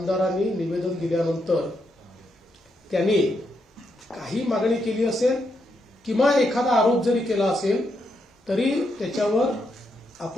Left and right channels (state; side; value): normal; both; correlation 0.81